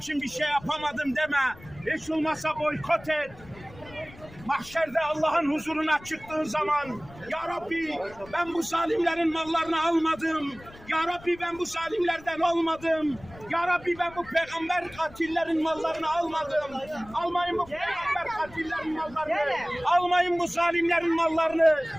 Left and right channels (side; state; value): left; noise; rumble, 20 dB below the sound